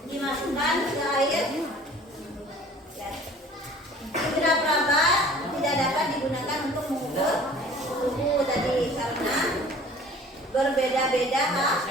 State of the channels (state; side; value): normal; both; correlation 0.48